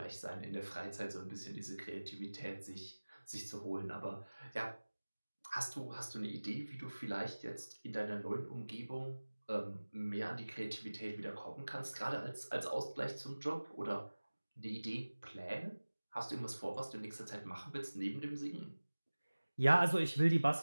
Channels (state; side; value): inverted; both; correlation -1.00